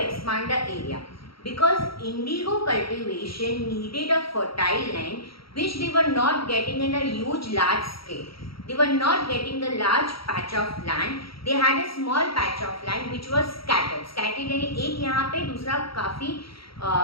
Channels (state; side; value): late; right; 0.75 ms